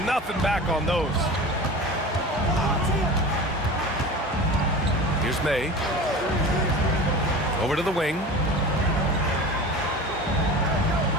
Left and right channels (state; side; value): normal; both; correlation 0.34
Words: nothing back on those. Here's May. Over to the wing.